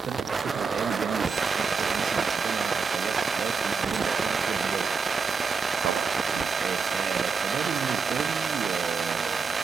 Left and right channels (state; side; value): quieter; left; 5.1 dB